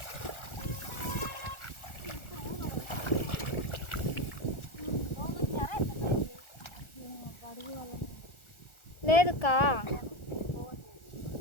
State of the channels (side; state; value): right; late; 1.4 ms